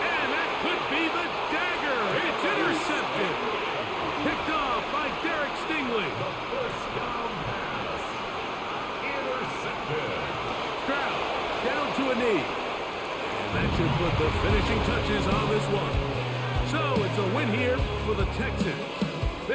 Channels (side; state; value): both; identical; correlation 1.00